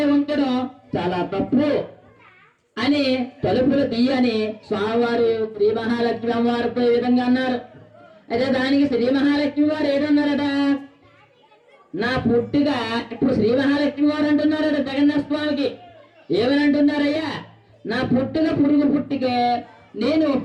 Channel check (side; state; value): both; identical; correlation 1.00